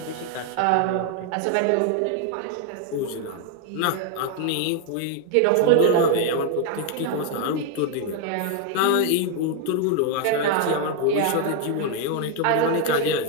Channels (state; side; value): different; both; correlation 0.01